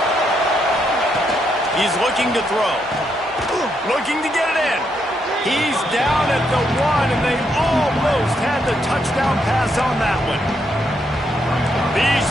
He's looking to throw. Looking to get it in. He's down at the 1, and they almost had the touchdown pass on that one. These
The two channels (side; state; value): both; normal; correlation 0.78